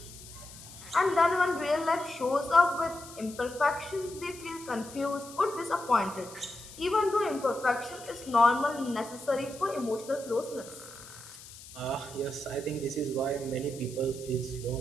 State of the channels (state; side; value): noise; left; hiss, 17 dB below the sound